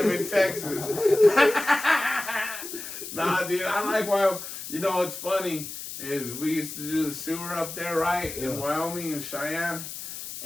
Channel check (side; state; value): left; noise; hiss, 9 dB below the sound